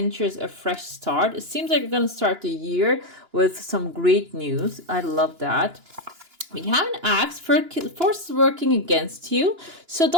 a fresh start. It seems like you're going to start the year with some great news. I love that. We have an axe for forces working against you. So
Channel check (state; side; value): late; left; 2.9 ms